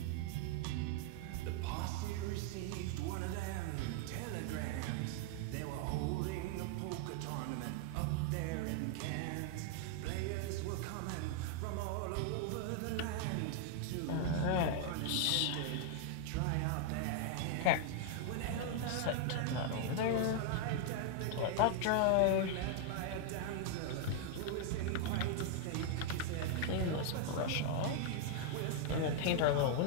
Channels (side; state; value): both; different; correlation 0.00